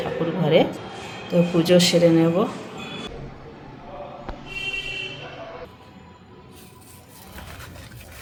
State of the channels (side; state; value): both; identical; correlation 1.00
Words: ঠাকুর ঘরে, তো পুজো সেরে নেব।